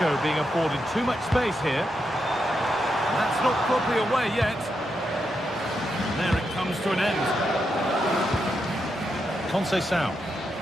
being afforded too much space here. And that's not properly away yet. And there it comes to an end. Conceição.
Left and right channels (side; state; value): both; normal; correlation 0.84